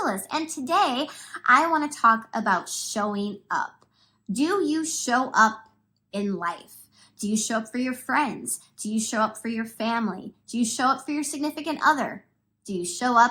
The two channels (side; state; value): both; identical; correlation 1.00